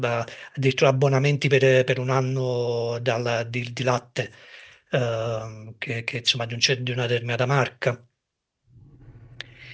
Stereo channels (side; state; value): both; identical; correlation 1.00